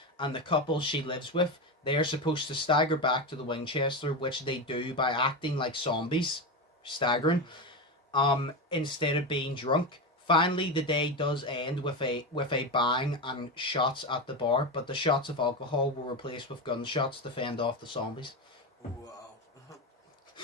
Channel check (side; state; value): both; normal; correlation 0.16